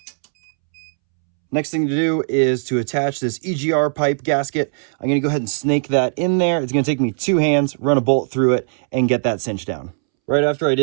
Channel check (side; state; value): left; silent; 66 dB below the other